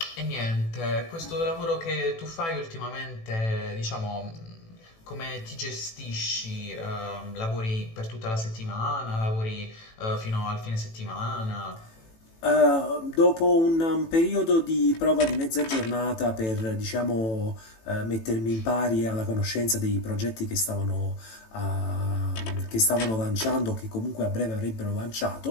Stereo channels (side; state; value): right; late; 18 ms